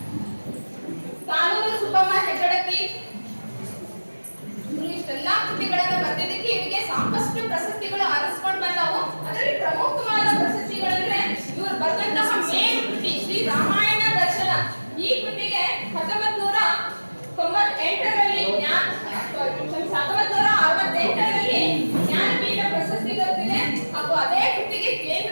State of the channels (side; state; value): both; inverted; correlation -1.00